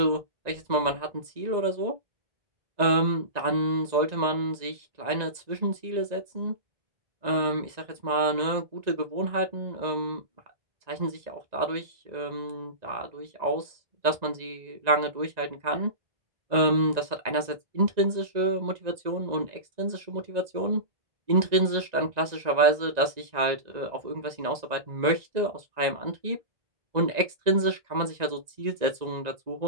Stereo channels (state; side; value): late; left; 1.9 ms